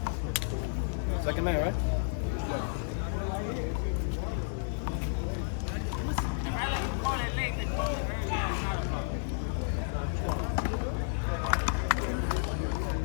Second man, right?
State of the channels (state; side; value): silent; right; 57 dB below the other